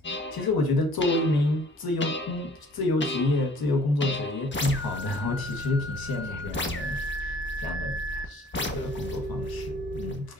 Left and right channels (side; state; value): both; normal; correlation 0.54